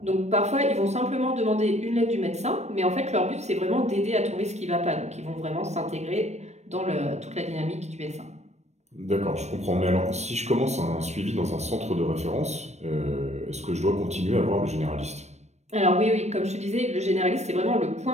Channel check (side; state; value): left; late; 0.32 ms